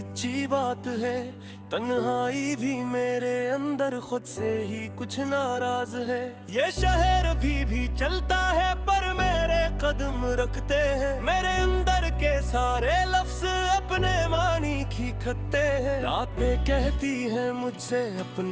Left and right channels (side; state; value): both; identical; correlation 1.00